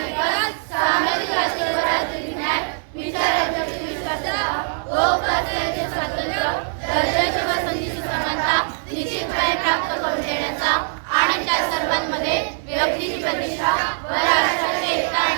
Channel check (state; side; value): silent; left; digital silence